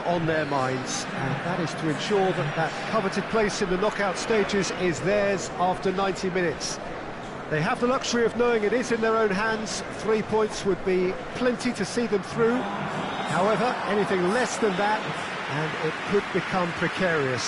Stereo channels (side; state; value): both; identical; correlation 1.00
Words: on their minds, and that is to ensure that that coveted place in the knockout stages is theirs after 90 minutes. They have the luxury of knowing it is in their own hands. 3 points would be plenty to see them through. However, anything less than that, and it could become